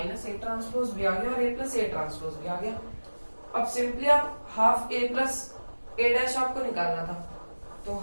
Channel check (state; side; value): inverted; both; correlation -1.00